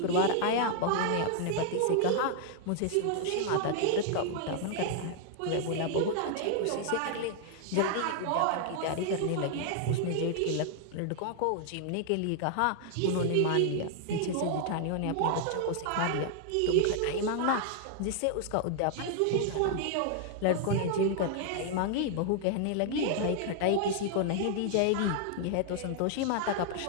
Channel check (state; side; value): different; both; correlation 0.00